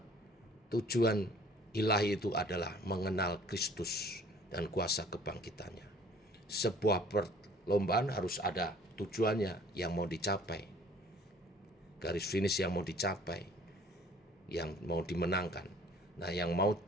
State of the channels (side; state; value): both; normal; correlation 0.53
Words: tujuan ilahi itu adalah mengenal Kristus dan kuasa kebangkitannya. Sebuah perlombaan harus ada tujuannya yang mau dicapai, garis finish yang mau dicapai, yang mau dimenangkan. Nah, yang mau